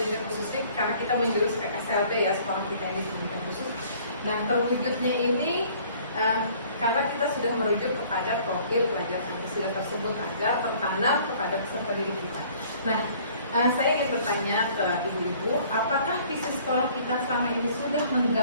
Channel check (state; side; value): inverted; both; correlation -0.55